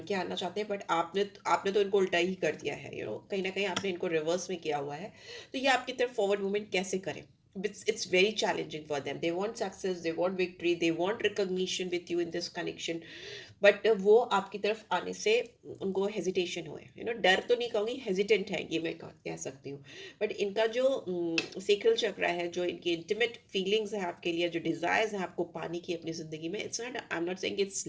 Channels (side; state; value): both; identical; correlation 1.00